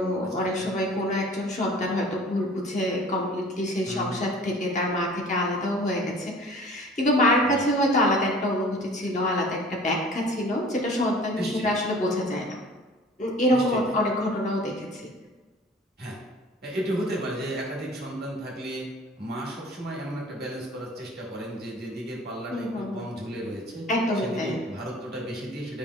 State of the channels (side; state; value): both; normal; correlation 0.47